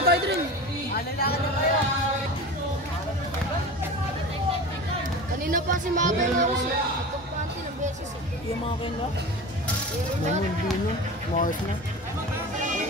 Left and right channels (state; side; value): normal; both; correlation 0.32